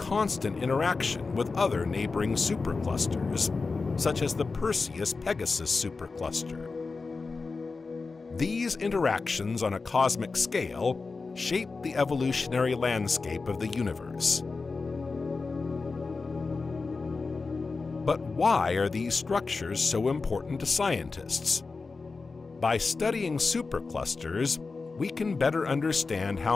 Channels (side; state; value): right; quieter; 4.2 dB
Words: interaction with other neighboring superclusters, such as the Perseus-Pegasus supercluster. These interactions on a cosmic scale shape the evolutionary landscape of the universe. But why are these structures so important to scientists? By studying superclusters, we can better understand